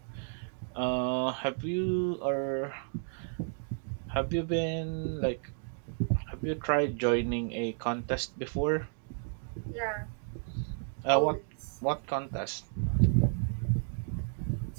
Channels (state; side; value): silent; left; 56 dB below the other